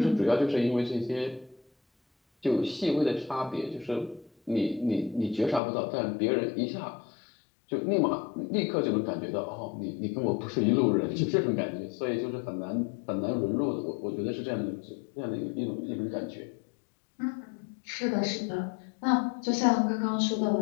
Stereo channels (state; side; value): drops out; right; at 5.6 s